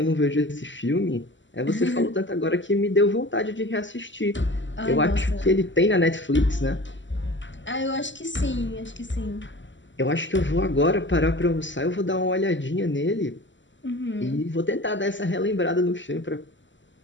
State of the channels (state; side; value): late; right; 0.54 ms